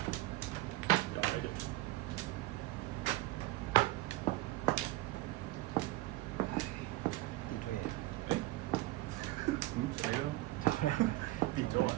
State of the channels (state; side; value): quieter; left; 18.2 dB